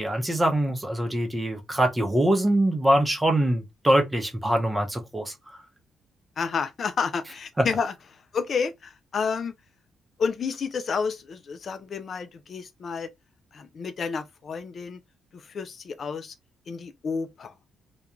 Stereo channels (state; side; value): normal; both; correlation 0.88